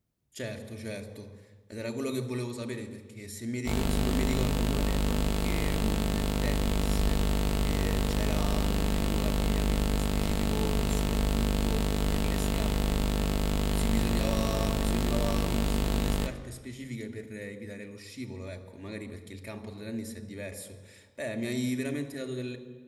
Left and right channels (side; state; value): both; identical; correlation 1.00